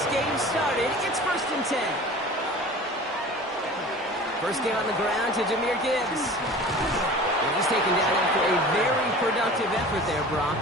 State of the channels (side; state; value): both; normal; correlation 0.40